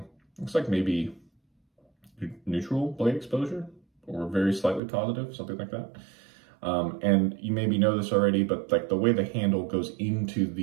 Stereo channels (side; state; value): left; drops out; at 4.8 s